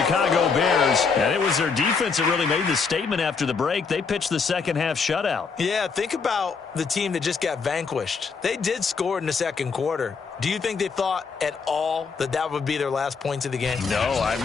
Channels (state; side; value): quieter; right; 5.2 dB